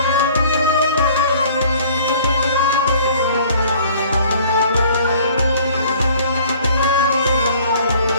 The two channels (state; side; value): inverted; both; correlation -0.53